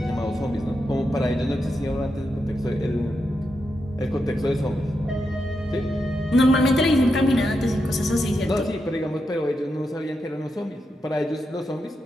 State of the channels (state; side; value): normal; both; correlation 0.86